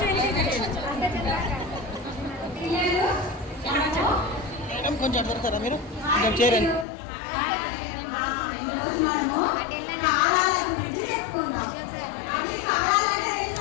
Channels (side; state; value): right; drops out; at 6.9 s